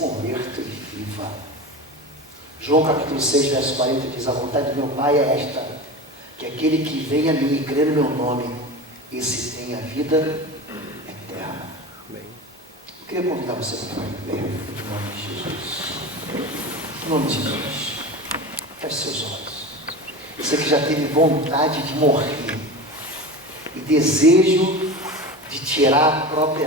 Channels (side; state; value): both; normal; correlation 0.29